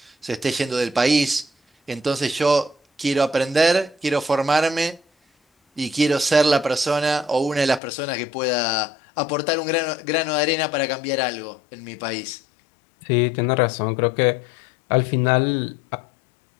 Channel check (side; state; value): right; drops out; at 7.8 s